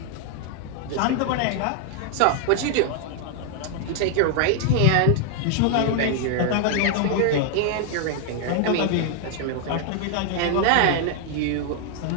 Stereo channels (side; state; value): both; different; correlation 0.00